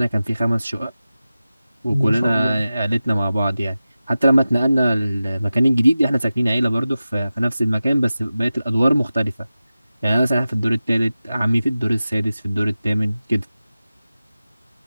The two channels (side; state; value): both; inverted; correlation -0.95